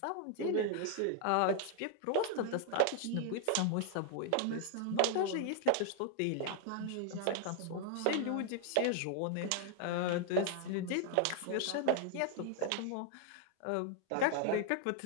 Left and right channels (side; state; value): both; different; correlation 0.00